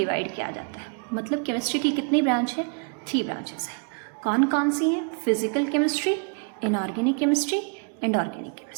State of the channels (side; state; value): left; quieter; 36.8 dB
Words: किया जाता है। मतलब केमिस्ट्री की कितनी ब्रांच है? 3 ब्रांचेस है। कौन कौन सी हैं? Physical chemistry, inorganic chemistry and organic